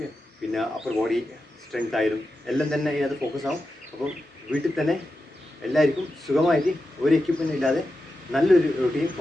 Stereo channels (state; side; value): normal; both; correlation 0.90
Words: പിന്നെ അപ്പർ ബോഡി സ്ട്രെങ്ത് ആയാലും എല്ലാം തന്നെ ഇതിനകത്ത് ഫോക്കസ് ആവും. അപ്പം വീട്ടിൽ തന്നെ എല്ലാവർക്കും സുഖമായിട്ട് ഒരു എക്യുപ്മെൻറ്റ് ഇല്ലാതെ നല്ലൊരു റൂട്ടീൻ